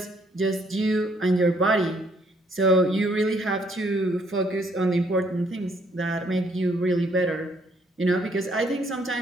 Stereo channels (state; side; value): normal; both; correlation 0.68